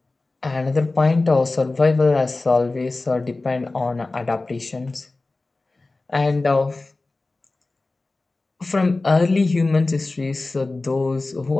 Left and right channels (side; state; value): right; quieter; 3.3 dB